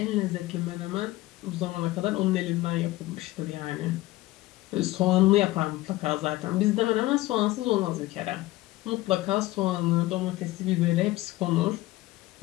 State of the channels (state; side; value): quieter; right; 17.9 dB